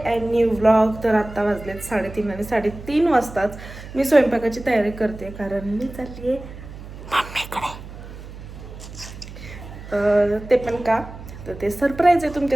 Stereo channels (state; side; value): noise; right; hum, 14 dB below the sound